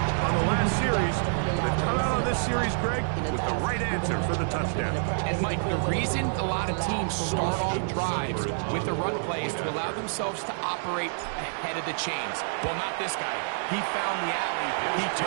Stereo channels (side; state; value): left; silent; digital silence